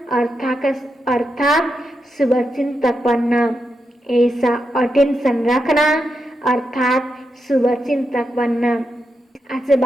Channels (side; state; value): both; normal; correlation 0.85